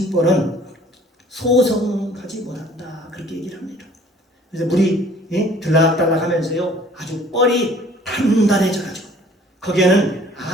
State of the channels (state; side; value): normal; both; correlation 0.54